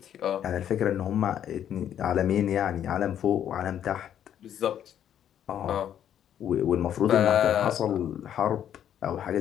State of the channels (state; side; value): quieter; right; 10.0 dB